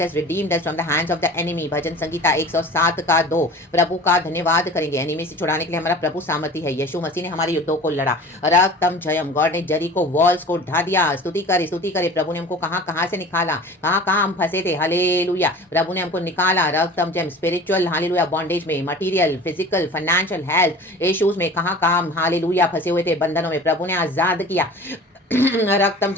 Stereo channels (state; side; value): normal; both; correlation 0.41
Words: has redeemed us from the hands of the enemy. भजन संगीता 107 का 2। प्रभु का धन्यवाद करेंगे। एनिमी से छुड़ाने के लिए हमारा प्रभु सामर्थी है। यीशु मसीह ने हमारे युद्धों को लड़ा। रक्तम जयम। गॉड ने जरीको वॉल्स को ढा दिया। स्तुति करे, स्तुति करे। प्रभु ने हमको कहाँ कहाँ से निकाला, कहाँ कहाँ हम फंसे थे। हालेलुया। प्रभु ने हमको निकाला। रक्तम जयम। स्पिरिचुअल हालेलुया बॉन्डेज में, material, physical, financial, health issues में कहाँ कहाँ हम हालेलुया फंसे हुए थे, बंधनों में प्रभु ने आजाद किया। रक्तम